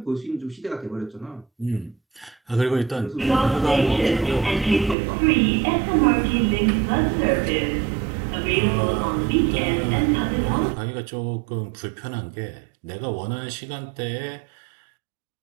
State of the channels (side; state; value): left; drops out; at 5.0 s